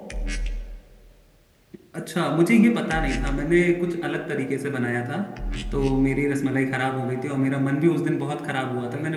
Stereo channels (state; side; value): identical; both; correlation 1.00